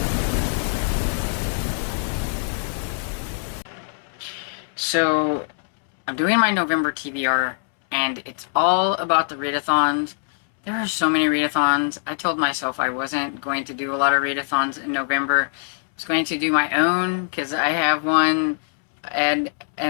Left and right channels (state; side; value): silent; right; 64 dB below the other